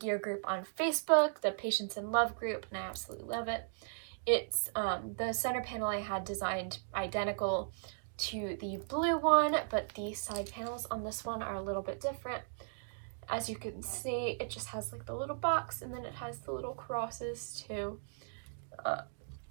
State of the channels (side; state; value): left; silent; digital silence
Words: group on Facebook, the Patience in Love group, and I absolutely love it. It's the center panel I had designed identical to the blue one, but the side panels on this one are a little bit different. As you can see, it just has like the little box, and then it has the little crosses too,